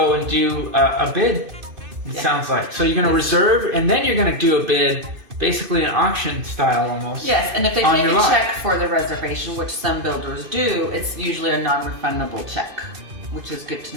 and do a bid. It sounds like. So you're gonna reserve, and then you're gonna do a bid. Basically an auction style almost. Yes, and if they take a check for the reservation, which some builders do, it's usually a non-refundable check, which is good to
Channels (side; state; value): left; late; 2.5 ms